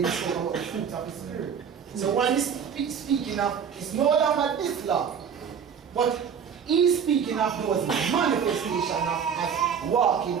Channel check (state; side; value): quieter; left; 7.3 dB